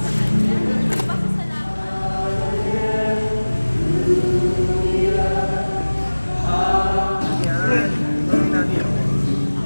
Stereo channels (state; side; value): inverted; both; correlation -1.00